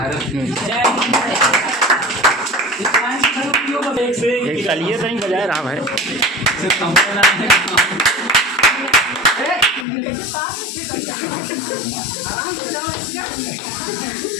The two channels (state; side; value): drops out; right; at 9.9 s